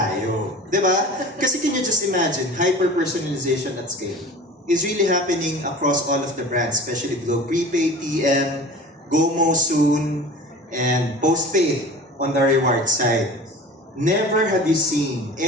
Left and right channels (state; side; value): normal; both; correlation 0.38